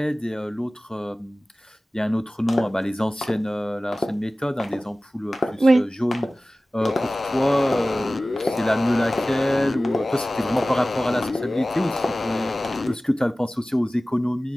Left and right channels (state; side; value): normal; both; correlation 0.97